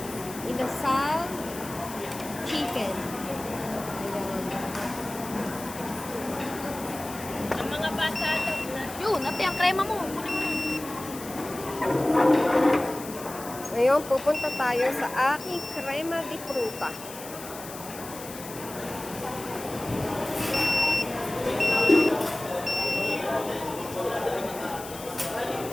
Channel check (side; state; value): left; noise; hiss, 13 dB below the sound